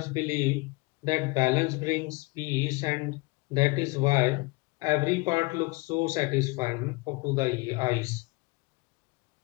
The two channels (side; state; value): right; quieter; 25.8 dB